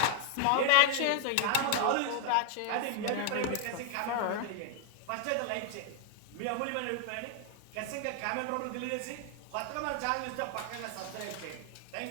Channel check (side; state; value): both; different; correlation 0.00